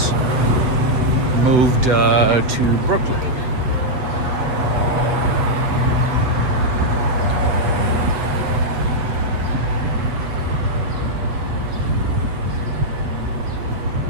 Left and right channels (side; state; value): left; late; 7.7 ms